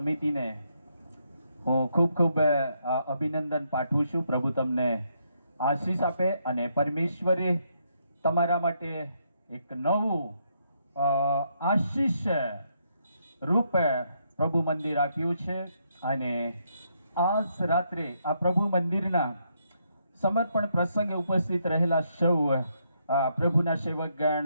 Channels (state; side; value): inverted; both; correlation -0.76